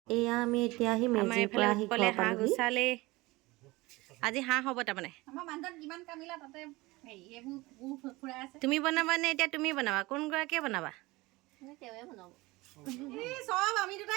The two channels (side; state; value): left; quieter; 21.5 dB